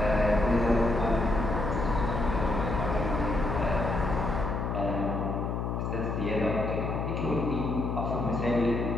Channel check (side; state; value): left; noise; hum, 2 dB below the sound